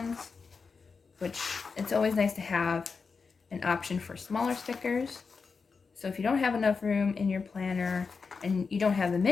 which it's always nice to have an option for smaller stickers. So if you don't have enough room in your planner and you don't have the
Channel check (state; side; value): quieter; right; 5.0 dB